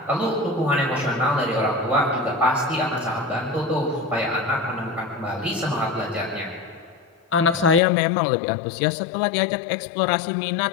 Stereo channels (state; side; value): drops out; right; at 7.8 s